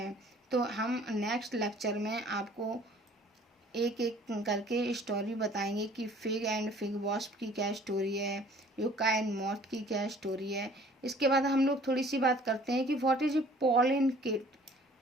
तो हम नेक्स्ट लेक्चर में आपको एक एक करके स्टोरी बताएंगे कि फिग एंड फिग वॉस्प की क्या स्टोरी है, यूका एंड मॉथ की क्या स्टोरी है। इसके बाद हम लोग थोड़ी सी बात करते हैं कि what is a pollen kit.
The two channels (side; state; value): both; normal; correlation 0.53